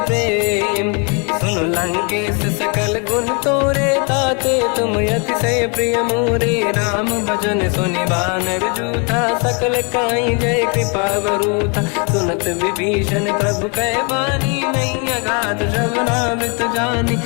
प्रेम सुन लंकेश सकल गुण तोरे ताते तुम अतिशय प्रिय मोरे राम भजन सुनि बानर जूथा सकल काई जय कृपा वरूथा सुनत विभीषण प्रभु कह बानी नहीं अगाध श्रवणामृत जानी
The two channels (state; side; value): quieter; right; 35.1 dB